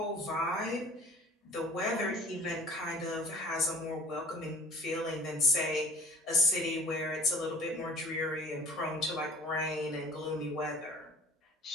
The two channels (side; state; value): both; normal; correlation 0.48